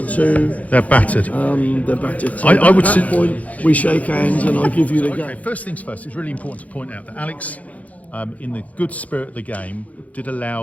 2. They're battered. They're battered. So I would at that point, we shake hands and I give you the Okay, game. first things first, it's really important to point out that Alex, in the good spirit of the game, did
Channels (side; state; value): right; late; 0.070 ms